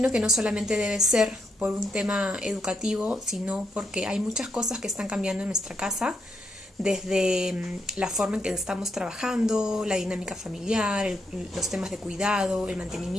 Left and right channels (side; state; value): both; normal; correlation 0.78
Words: que no solamente debe ser por un tema educativo, sino porque hay muchas cosas que están cambiando en nuestra casa, desde la forma en que estamos trabajando, la dinámica familiar, los temas de cuidado, el